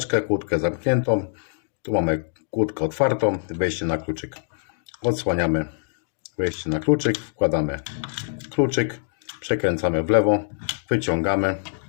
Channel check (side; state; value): right; silent; digital silence